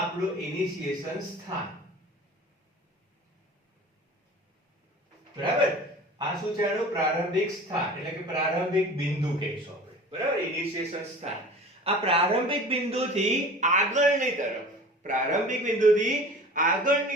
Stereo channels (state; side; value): normal; both; correlation 0.40